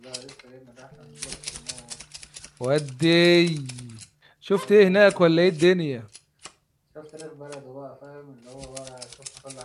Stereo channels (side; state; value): both; identical; correlation 1.00